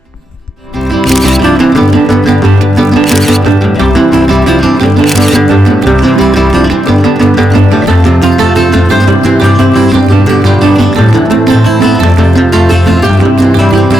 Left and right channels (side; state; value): both; normal; correlation 0.85